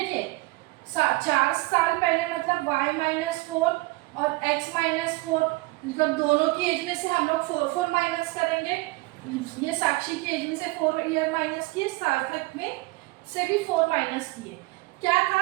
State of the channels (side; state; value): left; quieter; 22.7 dB